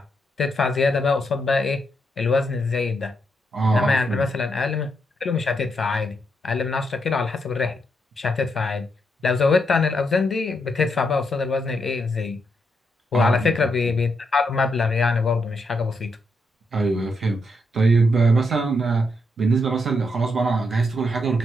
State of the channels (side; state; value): both; normal; correlation 0.80